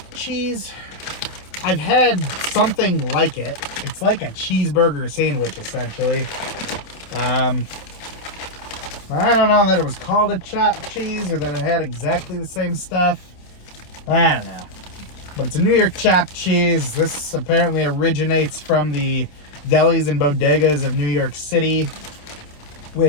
cheese. I've had something like it. It's like a cheeseburger sandwich, essentially. I don't know that it was called a chopped cheese or that it had exactly the same stuff. I don't know. But it's a New York chopped cheese. This apparently originates from the delis and bodegas of New York City,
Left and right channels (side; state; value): right; late; 27 ms